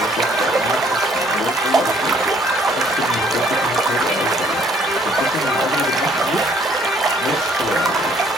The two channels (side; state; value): both; normal; correlation 0.62